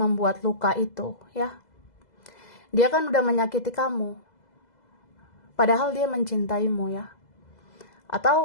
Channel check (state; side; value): late; right; 2.0 ms